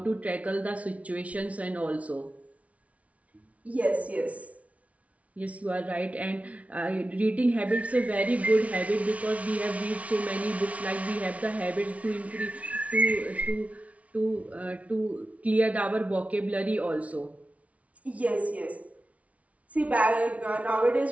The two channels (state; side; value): late; left; 0.066 ms